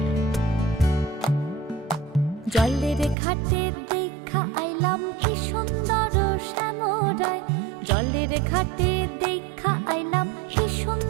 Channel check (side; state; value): left; drops out; at 3.2 s